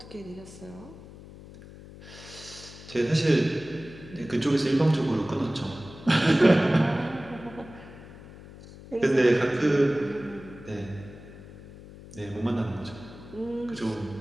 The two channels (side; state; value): left; noise; hum, 17 dB below the sound